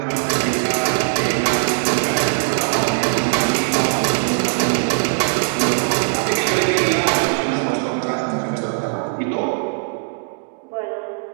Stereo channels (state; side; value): silent; left; digital silence